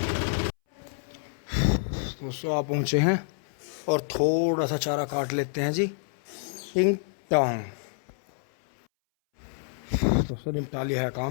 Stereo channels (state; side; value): silent; right; 60 dB below the other